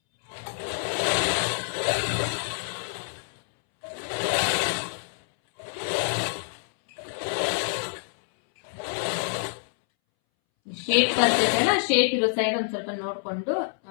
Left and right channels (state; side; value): silent; right; 60 dB below the other